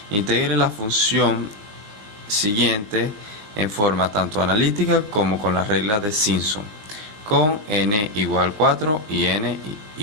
integre la función siguiente en forma tanto analítica como con las reglas de Simpson, con n igual 4 y n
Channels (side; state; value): left; late; 20 ms